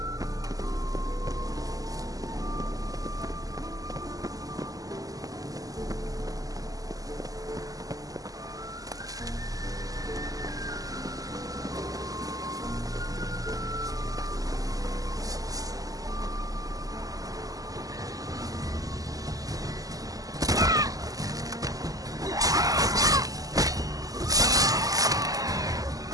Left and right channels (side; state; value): left; late; 0.17 ms